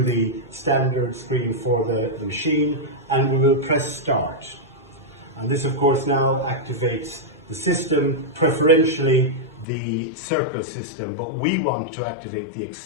the standard screen for the machine, and we will press start. And this of course now activates the system, preferentially the circle system, but we want to activate the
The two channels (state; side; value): drops out; right; at 9.7 s